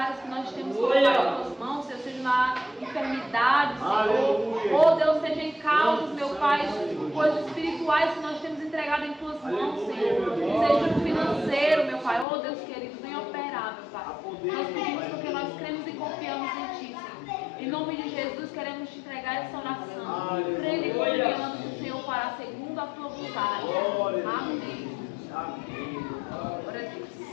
que nós temos colocado em Tuas mãos, seja na enfermidade, Senhor. Oh, Deus, seja em causas, meu Pai, coisas espirituais que nós temos entregado em Tuas mãos, Senhor. Seja no financeiro, meu Pai. Oh, Deus querido, venha operar, meu Pai. Nós pedimos porque nós cremos e confiamos em Ti, Senhor. Em nome de Jesus, queremos Te entregar essa oração. Crendo e confiando que o Senhor fará segundo a Tua vontade. Amém. Amém. Glória a Deus.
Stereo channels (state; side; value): drops out; right; at 12.2 s